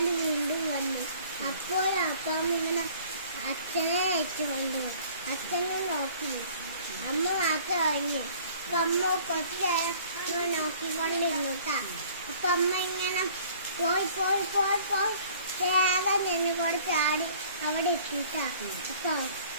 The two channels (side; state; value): both; inverted; correlation -0.52